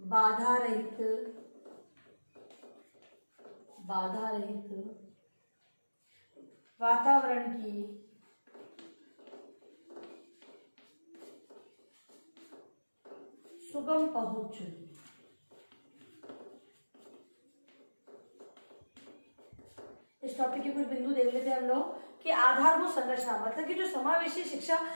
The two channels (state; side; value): inverted; both; correlation -1.00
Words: रहित वातावरण की सुगम पहुंच। इस टॉपिक के कुछ बिंदु देख लेते हैं हम लोग कि आधारभूत संरचना मतलब कि जो समावेशी शिक्षा